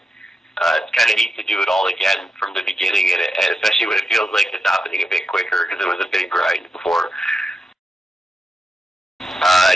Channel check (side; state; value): both; normal; correlation 0.87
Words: It's kind of neat to do it all again from the beginning, and especially when it feels like it's happening a bit quicker because it was a big grind before.